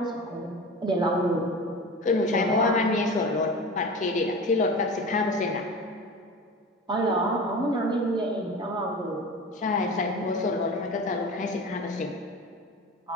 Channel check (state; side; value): normal; both; correlation 0.32